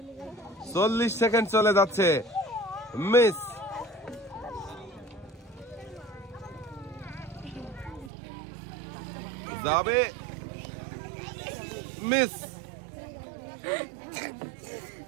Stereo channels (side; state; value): left; drops out; at 8.1 s